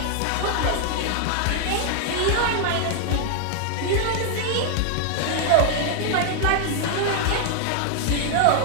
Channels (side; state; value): both; different; correlation 0.00